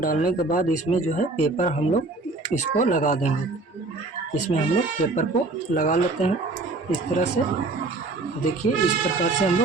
के बाद इसमें जो है पेपर हम लोग इसको लगा देंगे। इसमें हम लोग पेपर को लगा लेते हैं इस तरह से। देखिए इस प्रकार से हम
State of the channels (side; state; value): left; quieter; 3.4 dB